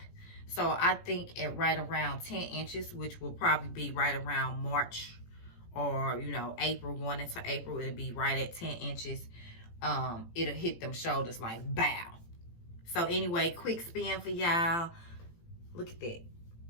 So I think at right around 10 inches, which will probably be right around March or, you know, April, going into April, it'll be right at 10 inches. It'll hit them shoulders like bow. So anyway, quick spin for y'all. Look at that.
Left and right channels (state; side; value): late; right; 18 ms